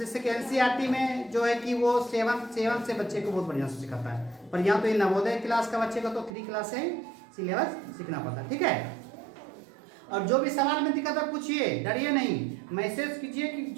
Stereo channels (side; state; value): left; drops out; at 6.3 s